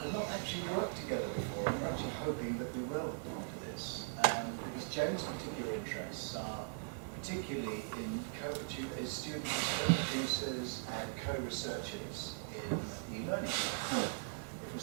not actually worked together before. We're actually hoping that we will after this. Because Jane's particular interests are particularly in students as co-producers and co-researchers in e-learning. If we're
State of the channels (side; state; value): left; silent; digital silence